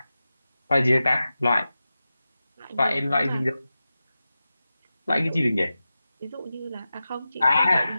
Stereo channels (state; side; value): inverted; both; correlation -0.94